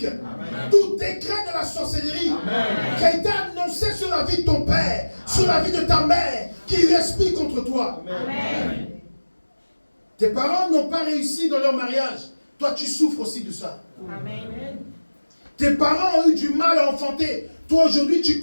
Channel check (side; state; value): both; inverted; correlation -1.00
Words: tout décret de la sorcellerie qui a été annoncé sur la vie de ton père, sur la vie de ta mère, qui respire contre toi. Amen. Tes parents n'ont pas réussi dans leur mariage. Toi, tu souffres aussi de ça. Amen. Tes parents ont eu du mal à enfanter. Toi, aujourd'hui, tu